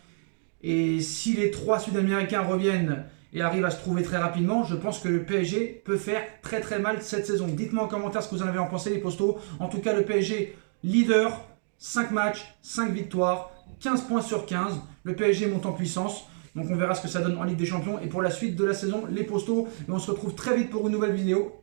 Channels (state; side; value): silent; left; digital silence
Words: Et si les 3 Sud-Américains reviennent et arrivent à se trouver très rapidement, je pense que le PSG peut faire très très mal cette saison. Dites-moi en commentaire ce que vous en avez en pensé, les postos. En tout cas, le PSG leader, 5 matchs, 5 victoires, 15 points sur 15. Le PSG monte en puissance. Donc on verra ce que ça donne en Ligue des Champions. Et pour la suite de la saison, les postos. Et on se retrouve très vite pour une nouvelle vidéo.